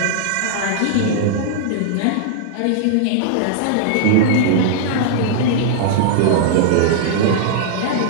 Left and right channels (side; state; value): both; different; correlation -0.01